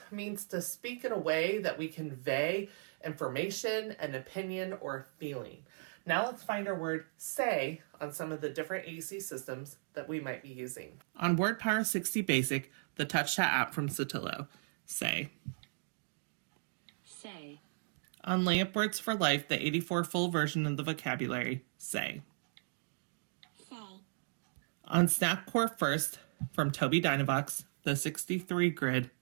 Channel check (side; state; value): left; silent; digital silence